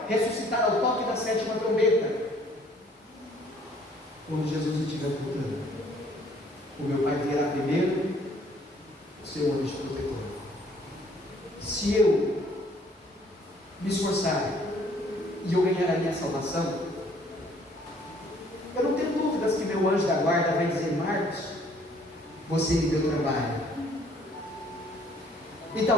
ressuscitar ao toque da 7ª trombeta, quando Jesus estiver voltando, o meu pai virá primeiro o seu anjo protetor. Se eu me esforçar e eu ganhar a minha salvação, eu não tenho dúvidas que meu anjo da guarda vai dizer, Marcos, você me deu trabalho. E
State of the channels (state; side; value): normal; both; correlation 0.60